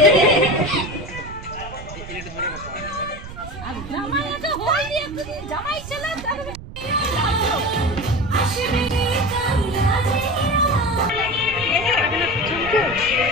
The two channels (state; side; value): noise; right; rumble, 13 dB below the sound